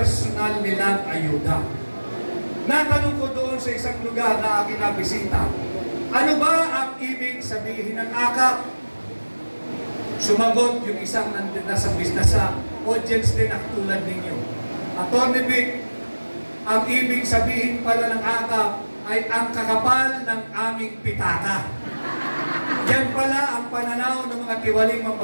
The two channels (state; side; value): inverted; both; correlation -1.00